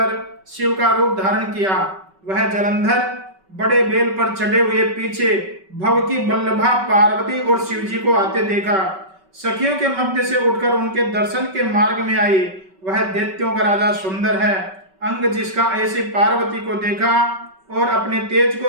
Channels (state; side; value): late; left; 5.3 ms